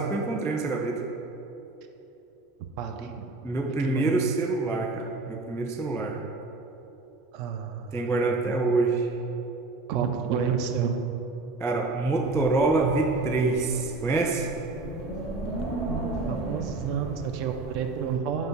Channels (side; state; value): left; quieter; 3.5 dB